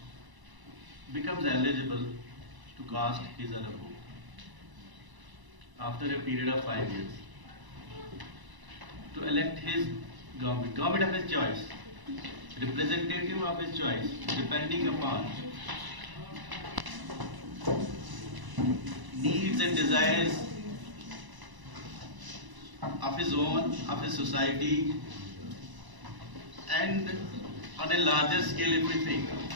becomes eligible to cast his or her vote after a period of 5 years to elect his government of his choice, representative of his choice, depending upon needs and desires of his own, of his society, and on a larger scale if we think.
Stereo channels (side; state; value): left; late; 1.0 ms